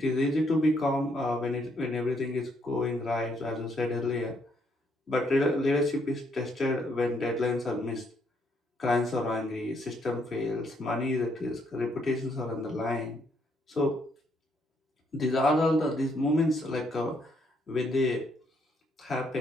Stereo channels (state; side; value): normal; both; correlation 0.72